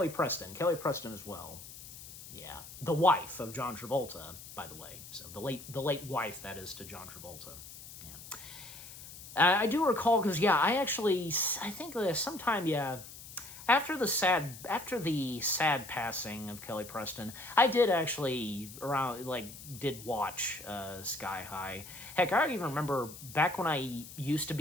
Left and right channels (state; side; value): noise; left; hiss, 15 dB below the sound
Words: Preston as well. Yeah, the wife of John Travolta, by the way. So the late wife, that is, to John Travolta. Yeah, I do recall because I think sometime after the sad passing of Kelly Preston, I did actually did watch Sky High. Heck, I even remember back when I used to